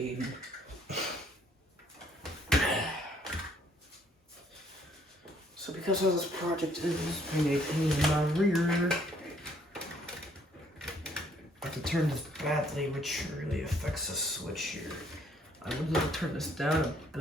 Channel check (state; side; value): normal; both; correlation 0.64